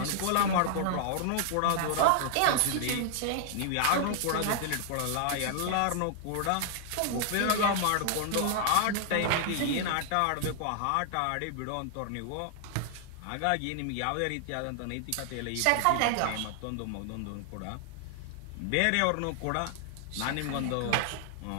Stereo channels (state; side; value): different; both; correlation -0.01